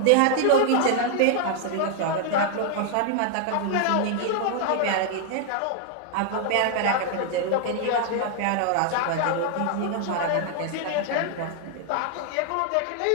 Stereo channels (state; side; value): different; both; correlation 0.00